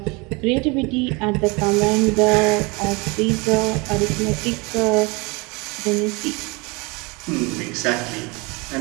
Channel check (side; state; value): left; quieter; 27.5 dB